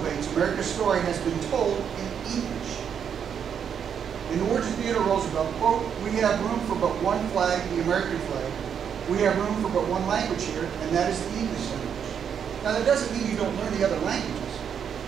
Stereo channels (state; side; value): quieter; left; 7.8 dB